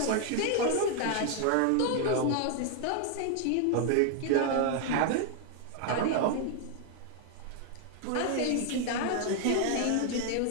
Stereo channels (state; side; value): different; both; correlation 0.00